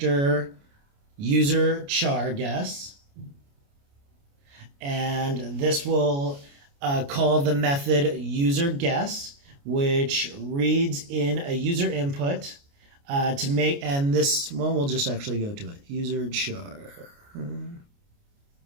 user char guess. And this will call the method user guess, which reads in a user input to make, and this one, we'll just actually go to it. User char.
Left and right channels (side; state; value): left; late; 29 ms